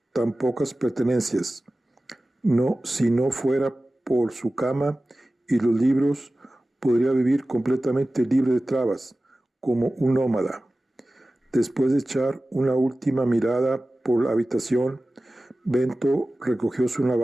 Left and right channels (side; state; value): both; normal; correlation 0.96